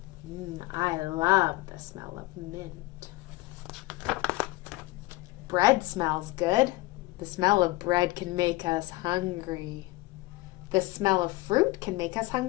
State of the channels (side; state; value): right; quieter; 20.2 dB